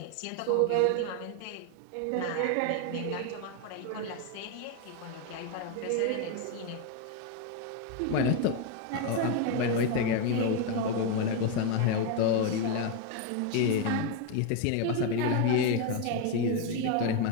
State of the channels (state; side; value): different; both; correlation 0.02